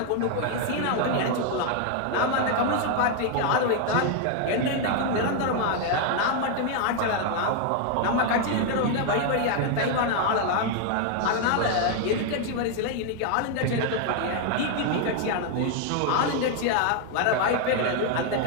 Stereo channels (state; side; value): different; both; correlation 0.00